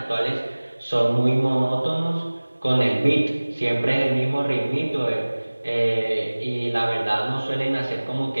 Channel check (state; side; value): inverted; both; correlation -1.00